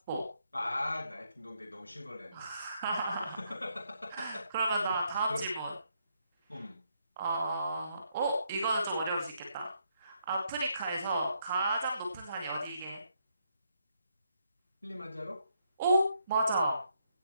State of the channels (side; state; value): both; inverted; correlation -0.76